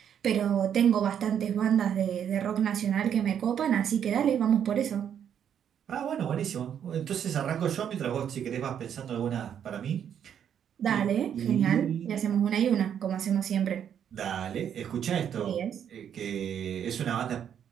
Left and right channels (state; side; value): quieter; left; 8.9 dB